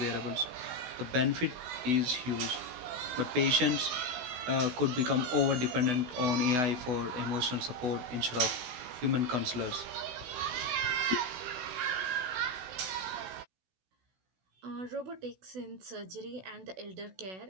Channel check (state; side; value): late; left; 16 ms